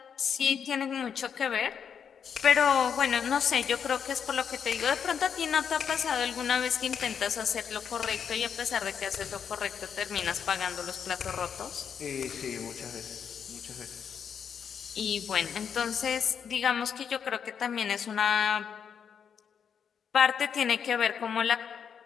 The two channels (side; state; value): right; quieter; 7.5 dB